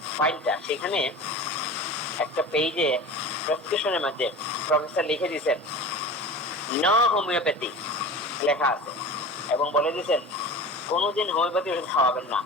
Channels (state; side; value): normal; both; correlation 0.34